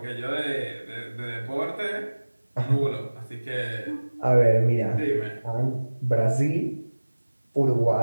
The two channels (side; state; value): both; inverted; correlation -1.00